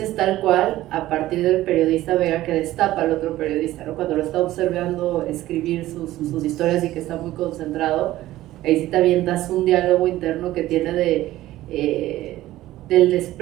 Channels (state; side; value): quieter; left; 15.5 dB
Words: tal cual a partir del periodista Vega que destapa al otro periodista, ¿no? Cuando lo está observando escribir sus historias y que está muy concentrado, ahí sí te avientas un diálogo interno que tiene del